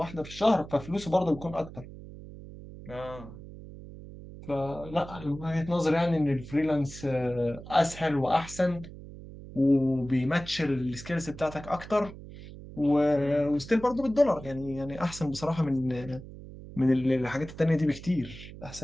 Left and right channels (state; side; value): noise; right; hum, 15 dB below the sound